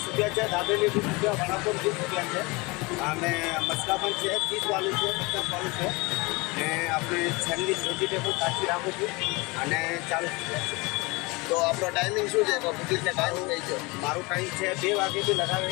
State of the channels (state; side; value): quieter; right; 25.5 dB